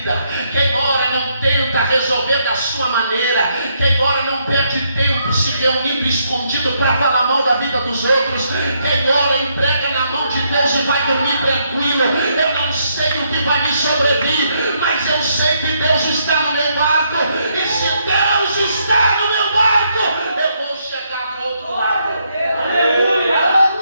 quem ora não tenta resolver da sua maneira, quem ora não perde tempo se reunindo escondido para falar mal da vida dos outros, quem ora entrega na mão de Deus e vai dormir tranquilo. Eu não sei o que vai me sobrevir, mas eu sei que Deus está no meu barco, e se Deus está no meu barco, eu vou chegar do outro lado. Aleluia!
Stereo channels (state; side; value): inverted; both; correlation -0.75